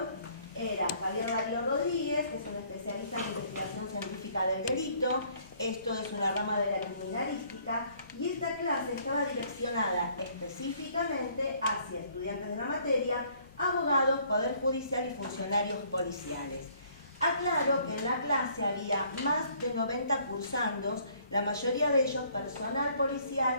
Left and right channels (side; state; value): both; inverted; correlation -0.61